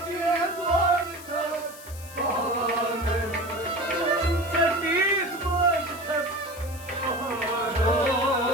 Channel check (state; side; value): noise; left; hiss, 17 dB below the sound